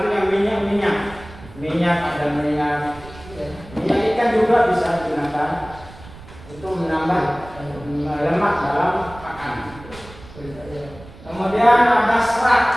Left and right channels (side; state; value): right; noise; rumble, 18 dB below the sound